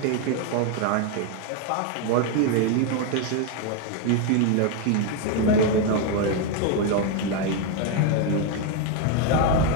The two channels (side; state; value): both; different; correlation 0.01